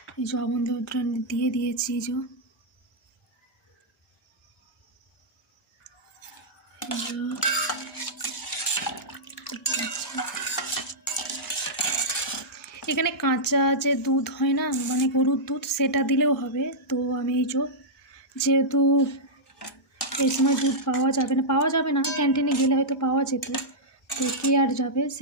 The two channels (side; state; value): both; normal; correlation -0.10